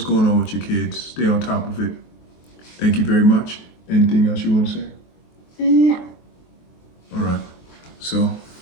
going on with your kids, stay on top of it. Thank you very much. Anything else you want to say? No. All right. So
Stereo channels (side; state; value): right; late; 23 ms